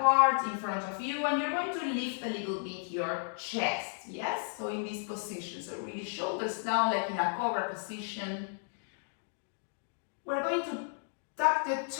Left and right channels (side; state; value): right; silent; digital silence